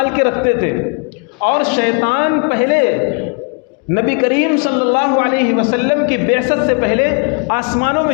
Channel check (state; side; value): quieter; right; 37.6 dB